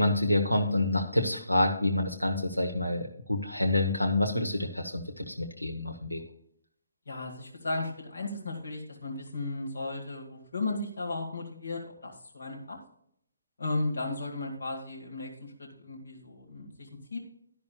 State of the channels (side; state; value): both; inverted; correlation -0.79